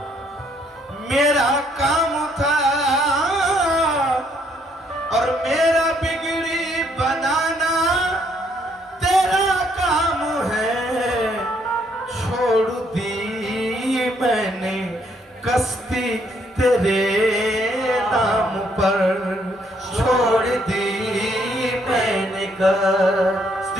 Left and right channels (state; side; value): normal; both; correlation 0.69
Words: मेरा काम था। और मेरा बिगड़ी बनाना तेरा काम है, छोड़ दी मैंने कश्ती तेरे नाम पर, छोड़ दी मैंने